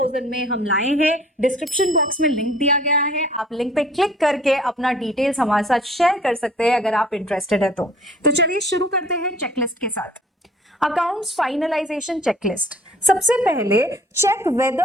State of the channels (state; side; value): normal; both; correlation 0.52